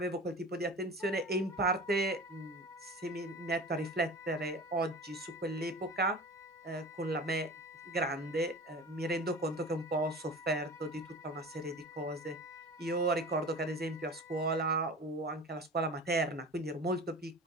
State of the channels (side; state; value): both; normal; correlation 0.37